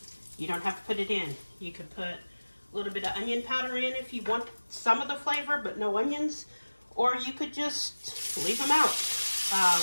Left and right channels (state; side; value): inverted; both; correlation -1.00